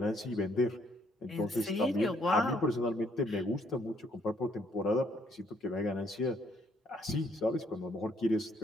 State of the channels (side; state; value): both; normal; correlation 0.68